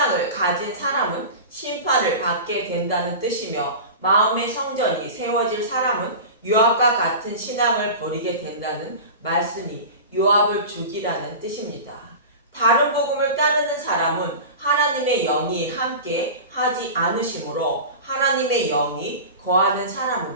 가진 사람은 심판을 받게 된다는 뜻이며 마음의 성전이 세워질 사람은 요압과 같은 신앙을 버리게 된다는 말씀이 요압을 죽이라는 뜻입니다. 다른 복음을 따르는 사람은 하나님의 영이 함께 하지 않으시므로 하나님의 영이 거하는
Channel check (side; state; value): both; inverted; correlation -0.31